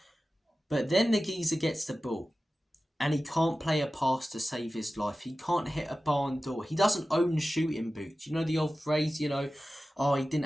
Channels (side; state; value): both; normal; correlation 0.95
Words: But then the geezer gets the ball and he can't play a pass to save his life. He can't hit a barn door. He doesn't own shooting boots. You know the old phrase, oh, he didn't